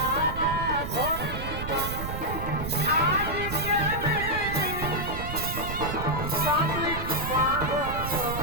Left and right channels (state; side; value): noise; right; rumble, 6 dB below the sound